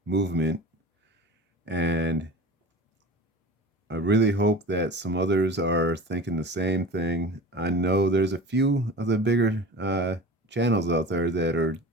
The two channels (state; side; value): normal; both; correlation 0.35